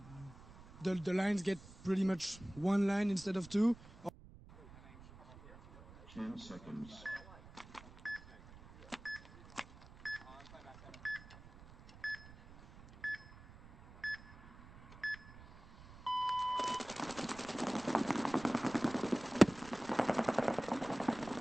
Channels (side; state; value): right; noise; rumble, 19 dB below the sound